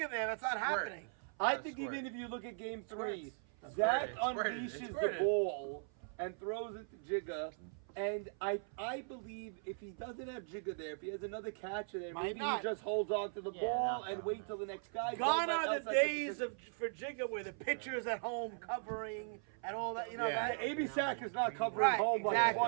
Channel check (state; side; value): silent; left; 52 dB below the other